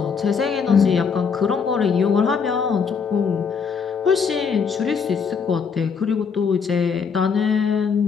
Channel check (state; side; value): quieter; right; 6.0 dB